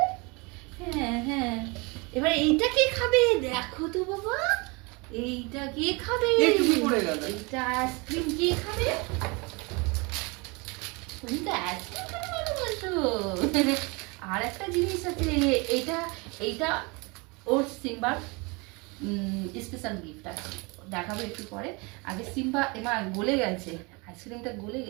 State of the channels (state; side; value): quieter; left; 28.1 dB